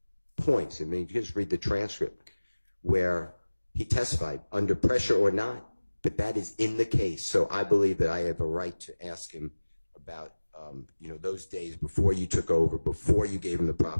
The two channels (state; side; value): inverted; both; correlation -1.00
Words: points. I mean, you just read the transcript where he testified under pressure or not, but that is in the case. So I believe that I have a right to ask him about, those days before you took over, before you gave him the